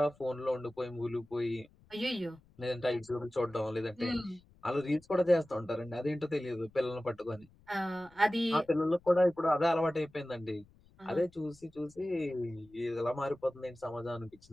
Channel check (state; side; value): noise; left; rumble, 28 dB below the sound